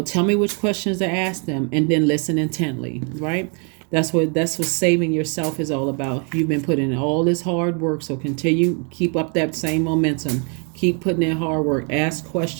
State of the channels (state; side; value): quieter; left; 38.4 dB